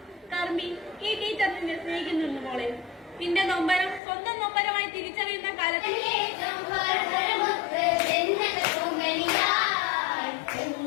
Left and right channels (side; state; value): right; drops out; at 4.0 s